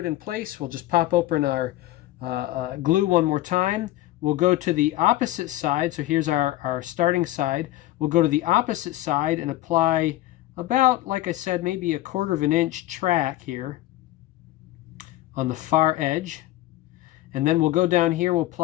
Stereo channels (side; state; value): right; quieter; 15.8 dB